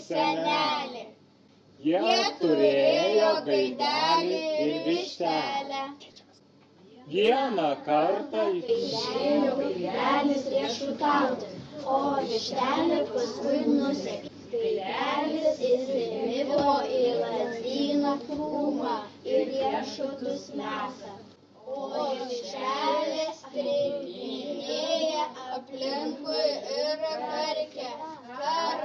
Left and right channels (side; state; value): both; identical; correlation 1.00